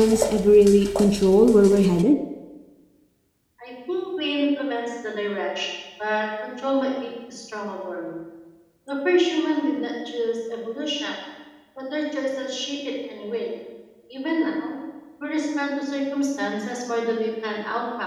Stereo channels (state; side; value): identical; both; correlation 1.00